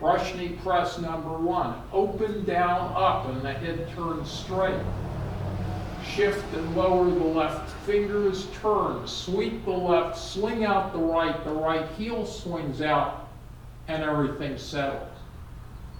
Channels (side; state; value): both; identical; correlation 1.00